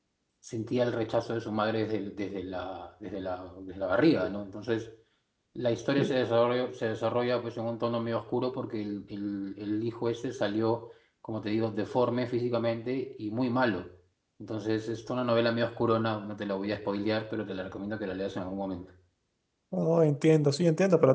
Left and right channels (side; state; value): both; identical; correlation 1.00